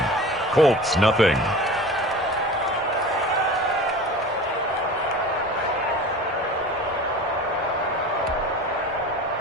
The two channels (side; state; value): both; normal; correlation 0.36